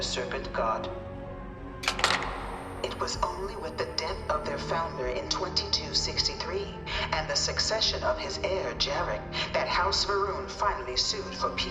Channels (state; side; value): identical; both; correlation 1.00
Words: serpent god. It was only with the death of their founder in 2263 and the succession of his heir Jarek that House Varun finally sued for